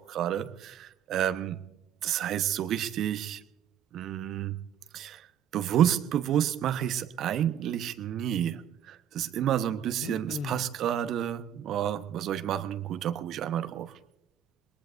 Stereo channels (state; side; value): quieter; left; 9.8 dB